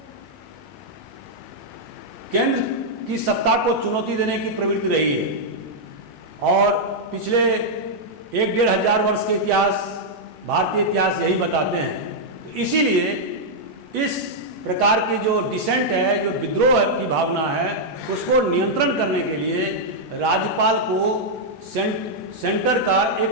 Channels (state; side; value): normal; both; correlation -0.05